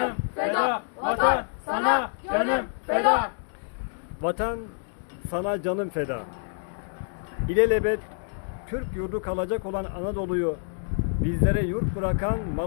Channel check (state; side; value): silent; right; digital silence